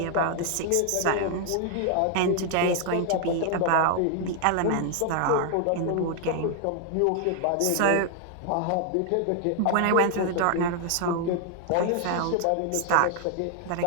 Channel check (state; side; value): different; both; correlation 0.00